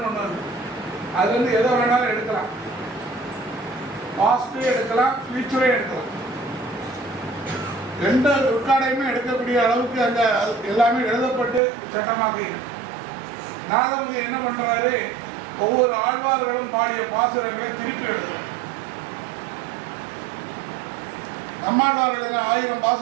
ஒன்று இருக்கு. அது வந்து எதை வேணாலும் எடுக்கலாம். பாஸ்டே எடுக்கலாம், ஃபியூச்சரே எடுக்கலாம். எந்த ரெக்கார்டையுமே எடுக்கக்கூடிய அளவுக்கு அந்த எல்லாமே எழுதப்பட்டு சட்டமாக இருக்கு. நாதமுனி என்ன பண்றாரு? ஒவ்வொரு ஆழ்வார்களும் பாடிய பாசுரங்களை திருப்பி எழுதுறார். நம்மாழ்வார்கள் 1000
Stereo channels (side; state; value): left; drops out; at 11.6 s